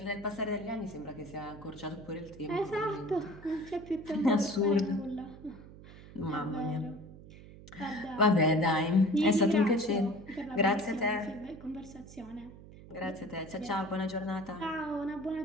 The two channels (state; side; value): noise; right; hum, 17 dB below the sound